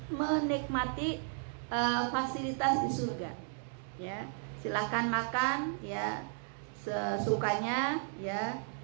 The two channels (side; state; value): left; silent; 55 dB below the other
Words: menikmati fasilitas di surga. Ya, silahkan makan ya sesukanya ya,